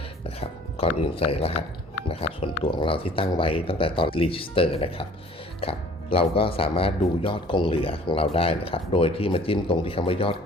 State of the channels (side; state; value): both; normal; correlation 0.52